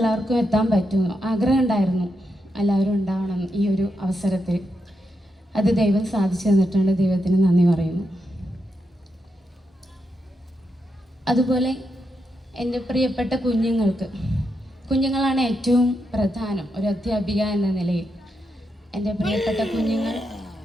എത്താൻ പറ്റുമെന്ന്, ആഗ്രഹം ഉണ്ടായിരുന്നു എല്ലാവരും ഉണ്ടാവണം ഈ ഒരു അവസരത്തിൽ. അത് ദൈവം സാധിച്ചു തന്നിട്ടുണ്ട്, ദൈവത്തിന് നന്ദി പറയുന്നു. അതുപോലെ എൻ്റെ പ്രിയപ്പെട്ട കുഞ്ഞുങ്ങളാണ് ഏറ്റവും പ്രധാനം ഒരു അധ്യാപിക എന്ന നിലയിൽ. എൻ്റെ പ്രിയപ്പെട്ട കുഞ്ഞുങ്ങൾ,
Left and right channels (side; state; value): both; normal; correlation 0.84